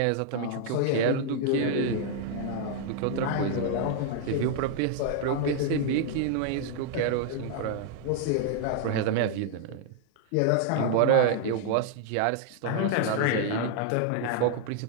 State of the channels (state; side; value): different; both; correlation 0.00